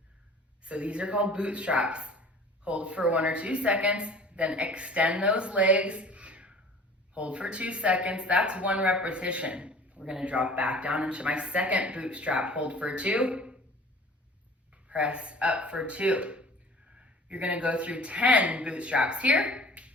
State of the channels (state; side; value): normal; both; correlation 0.45